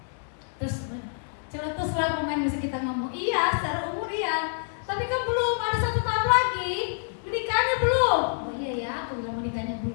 Terus lah pemain musik kita ngomong, iya secara umur iya, tapi kan belum ada 1 tahun lagi, menikahnya belum. Oh iya ya, aku bilang menikahnya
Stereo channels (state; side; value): silent; right; digital silence